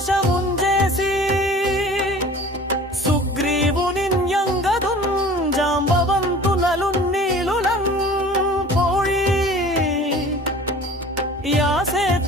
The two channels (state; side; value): normal; both; correlation 0.43